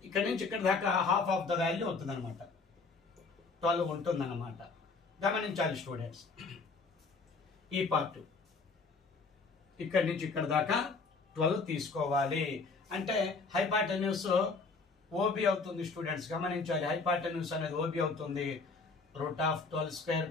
ఇక్కడ నుంచి ఇక్కడ దాకా హాఫ్ ఆఫ్ ద వాల్యూ అవుతుంది అనమాట, 12 ఉంటుంది అనమాట. గమనించాలి స్టూడెంట్స్. ఈ పార్ట్ ఇక్కడ నుంచి ఇక్కడ దాకా 12 తీసుకోవాలి. అంటే హైపాటన్యూస్ ఓబి అవుతుంది స్టూడెంట్స్. గమనించాలి, హైపాటన్యూస్ అనేది ఓబి అవుతుంది. Root of 12 square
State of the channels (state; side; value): quieter; right; 4.3 dB